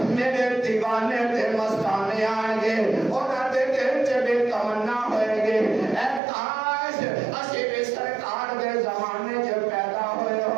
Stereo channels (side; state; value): left; drops out; at 6.2 s